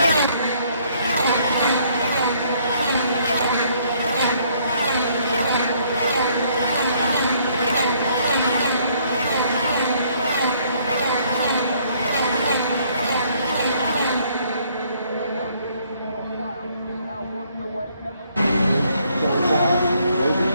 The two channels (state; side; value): inverted; both; correlation -0.65